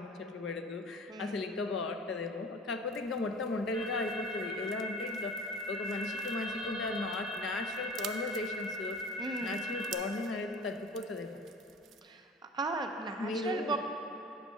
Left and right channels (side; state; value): both; normal; correlation 0.41